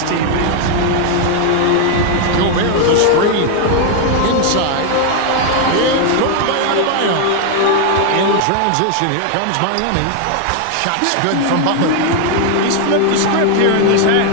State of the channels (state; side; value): different; both; correlation 0.00